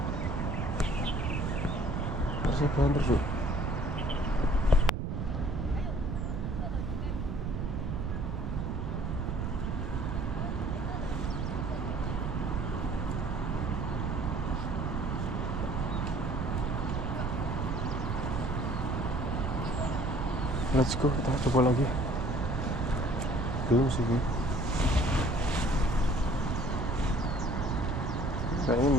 Harusnya banter cuk. Let's go, kita coba lagi. Belum sih. Kayaknya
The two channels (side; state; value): right; noise; rumble, 2 dB below the sound